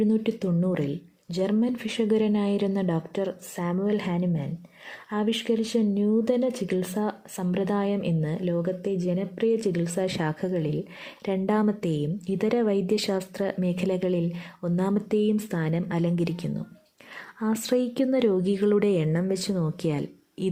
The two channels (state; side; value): identical; both; correlation 1.00